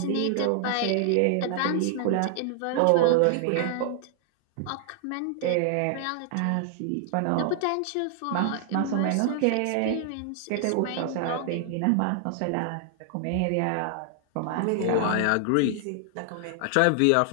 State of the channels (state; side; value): different; both; correlation 0.00